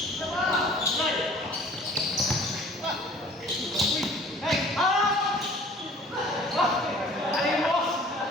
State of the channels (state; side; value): normal; both; correlation 0.50